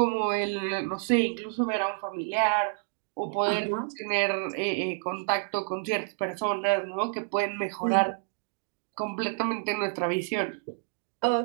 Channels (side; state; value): left; silent; 59 dB below the other